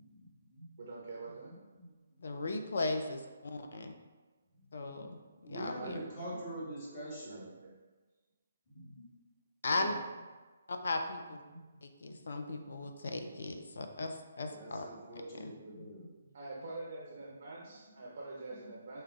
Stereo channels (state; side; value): inverted; both; correlation -0.80